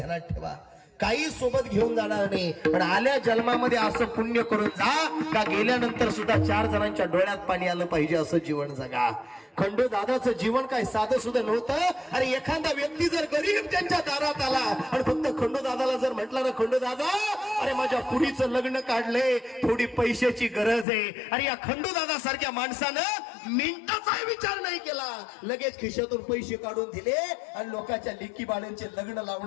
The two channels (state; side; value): drops out; right; at 20.9 s